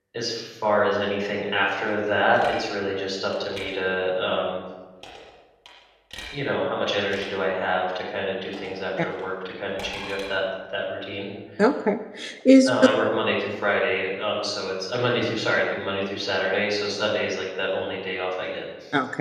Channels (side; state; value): both; identical; correlation 1.00